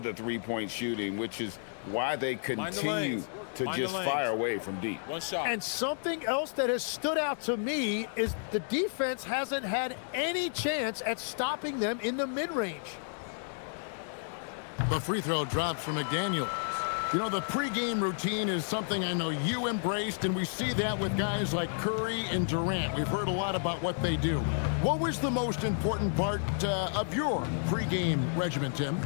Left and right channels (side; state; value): right; silent; digital silence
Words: three-point shooting, which is why they continue to just fire away from deep. One shot. And something else that has stood out to me is the defense hasn't had any chance at stopping them in the mid-range. The free throw drops from McDaniels. You know, the pregame routine is something I know you embraced, and we see that with guys like Curry and Durant. We've heard a lot about what they do. What was the most important part of your pregame regimen, Tim?